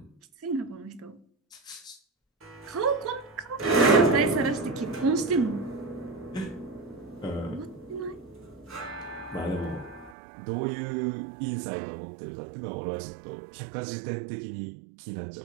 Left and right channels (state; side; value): drops out; left; at 10.2 s